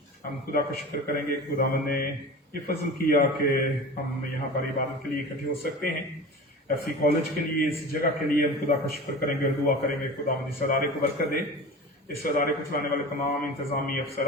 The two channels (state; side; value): normal; both; correlation 0.34